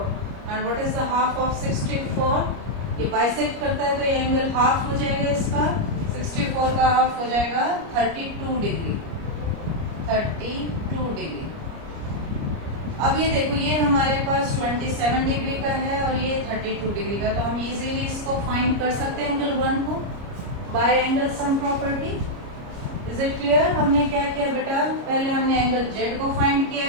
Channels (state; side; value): late; left; 29 ms